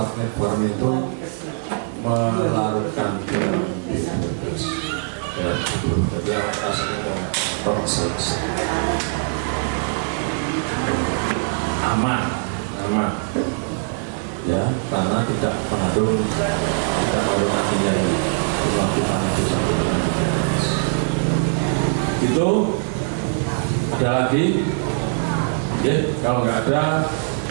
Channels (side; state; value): left; silent; 64 dB below the other